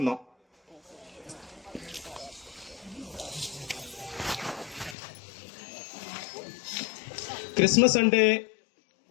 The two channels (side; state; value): right; drops out; at 5.0 s